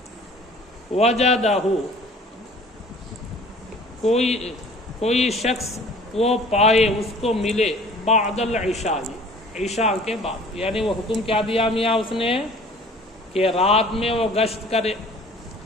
وجدہ کوئی شخص وہ پائے، اس کو ملے، بعد العشاء عشاء کے بعد، یعنی وہ حکم کیا دیا میاں اس نے کہ رات میں وہ گشت کرے،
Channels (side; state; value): both; normal; correlation 0.49